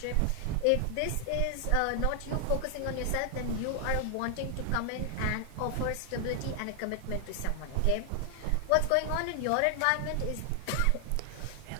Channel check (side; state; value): both; different; correlation 0.00